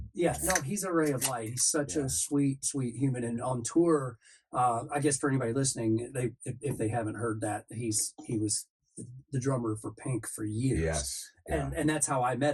Yeah, no, he's a ray of light. He's such a sweet human. And on tour, I guess for anybody listening, if they haven't heard that, he was the drummer for Pink for years. Yes. And that's how I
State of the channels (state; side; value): identical; both; correlation 1.00